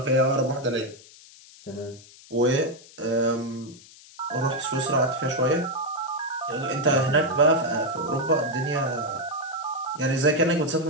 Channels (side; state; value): left; noise; hiss, 22 dB below the sound